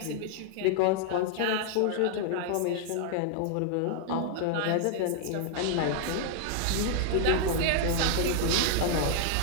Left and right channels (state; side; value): different; both; correlation 0.00